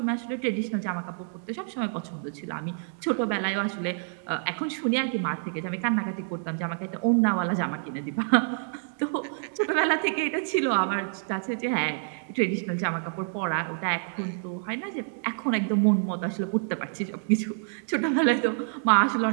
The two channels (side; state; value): left; silent; digital silence